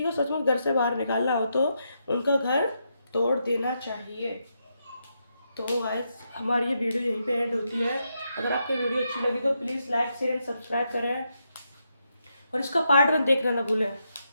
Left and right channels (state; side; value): inverted; both; correlation -0.82